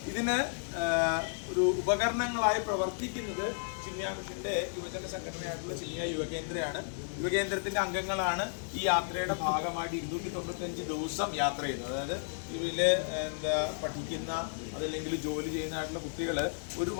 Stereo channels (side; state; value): right; silent; digital silence